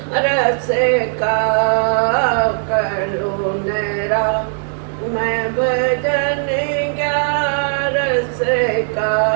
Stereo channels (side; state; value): left; silent; digital silence